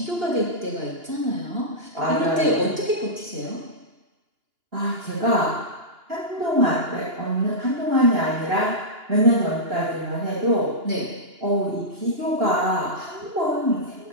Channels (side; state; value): left; late; 2.8 ms